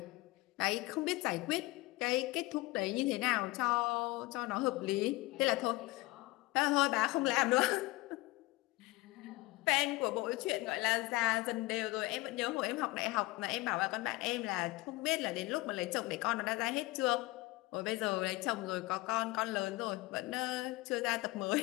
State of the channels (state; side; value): quieter; right; 20.9 dB